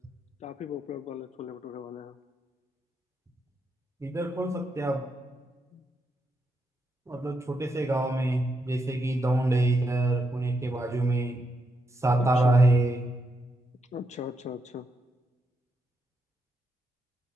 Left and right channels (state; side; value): normal; both; correlation 0.81